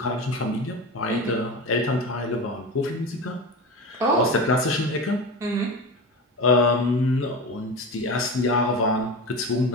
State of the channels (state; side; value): normal; both; correlation 0.26